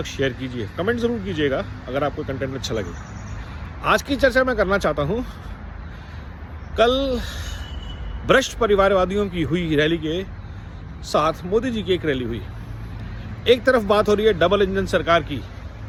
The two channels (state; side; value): identical; both; correlation 1.00